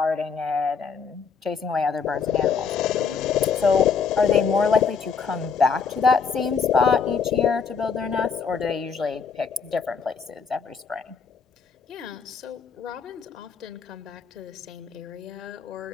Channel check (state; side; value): quieter; right; 5.9 dB